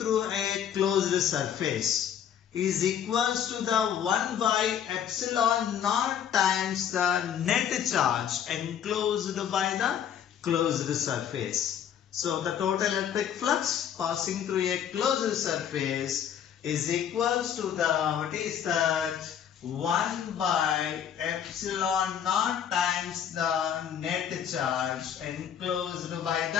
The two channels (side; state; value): right; quieter; 9.1 dB